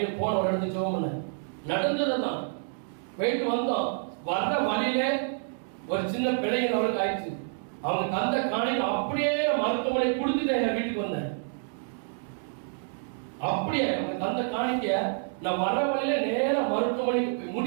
போன ஒரு இடத்துக்கு ஜெபம் நடந்ததுதான். போயிட்டு வந்தோம், வர்ற வழியில ஒரு சின்ன பிள்ளைங்க அவளுக்கு ஆயிடுச்சு. அவங்க தந்த காணியில் அப்படியே மருத்துவமனை கொடுத்துட்டு என் வீட்டுக்கு வந்தேன். அப்படியே அவங்க தந்த காணிக்க நான் வர்ற வழியில நேர மருத்துவமனைக்கு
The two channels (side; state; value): left; silent; digital silence